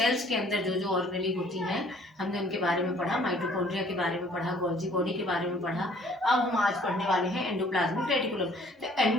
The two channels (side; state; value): both; normal; correlation 0.57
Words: के अंदर जो जो ऑर्गेनेली होती हैं हमने उनके बारे में पढ़ा, माइटोकॉन्ड्रिया के बारे में पढ़ा, गोल्जी बॉडी के बारे में पढ़ा। अब हम आज पढ़ने वाले हैं एंडोप्लाज्मिक रेटिकुलम। तो